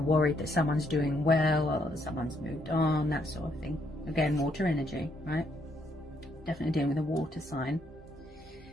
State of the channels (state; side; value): normal; both; correlation 0.73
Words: worried that someone's doing well or someone's moved on, that sort of thing. Again, water energy, right? Definitely dealing with a water sign.